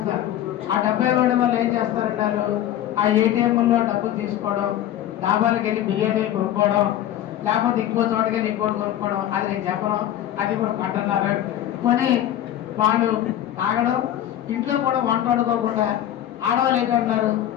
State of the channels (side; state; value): right; quieter; 11.9 dB